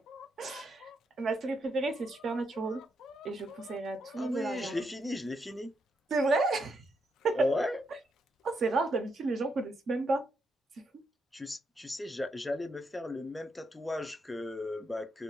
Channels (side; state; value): both; normal; correlation 0.80